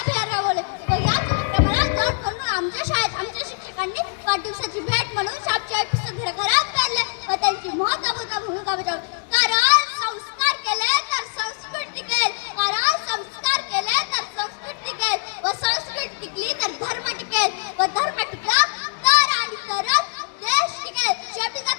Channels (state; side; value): silent; right; digital silence